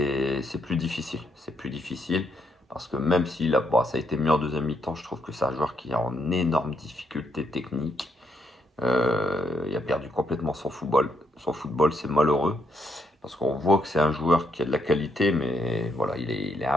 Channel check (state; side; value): normal; both; correlation 0.75